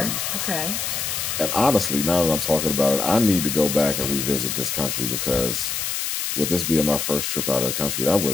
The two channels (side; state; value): left; noise; hiss, 2 dB below the sound